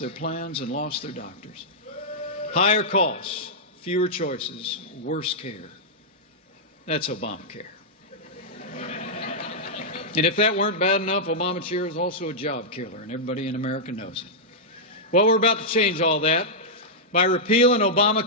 plans and lost their doctors. Higher costs, fewer choices, worse care. That's Obamacare. And if that weren't bad enough, Obamacare is also a job killer, and everybody in America knows it. Well, we're about to change all that by repealing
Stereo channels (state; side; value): normal; both; correlation -0.09